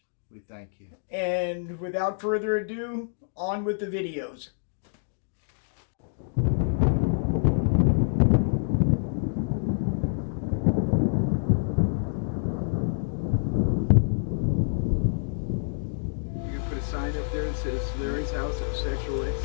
We thank you. And without further ado, on with the videos. You put a sign up there that says Larry's house of sexual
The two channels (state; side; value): silent; right; digital silence